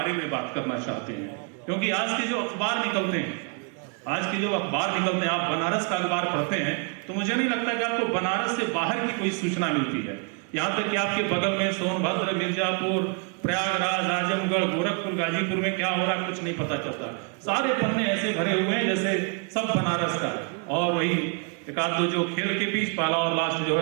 में बात करना चाहते हैं। क्योंकि आज के जो अखबार निकलते हैं, आप बनारस का अखबार पढ़ते हैं तो मुझे नहीं लगता कि आपको बनारस से बाहर की कोई सूचना मिलती है। यहाँ तक कि आपके बगल में सोनभद्र, मिर्जापुर, प्रयागराज, आजमगढ़, गोरखपुर, गाजीपुर में क्या हो रहा है कुछ नहीं पता चलता। सारे पन्ने ऐसे भरे हुए हैं जैसे सब बनारस का। और वही एक आध दो जो खेल के बीच पहला और लास्ट जो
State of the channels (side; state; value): left; quieter; 37.6 dB